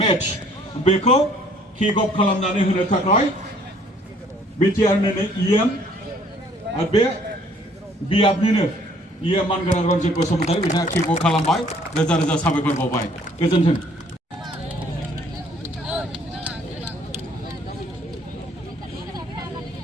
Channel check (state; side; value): normal; both; correlation 0.60